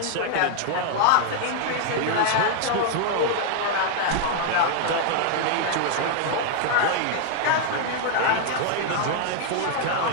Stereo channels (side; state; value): both; different; correlation 0.00